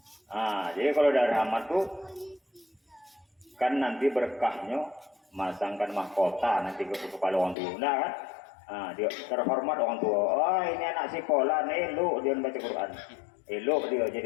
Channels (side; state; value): right; drops out; at 7.6 s